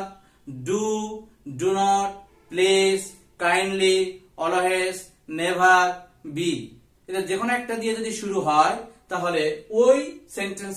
do, do not, please, kindly, always, never, be, এদের যে কোনো একটা দিয়ে যদি শুরু হয় তাহলে ওই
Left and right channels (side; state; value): both; identical; correlation 1.00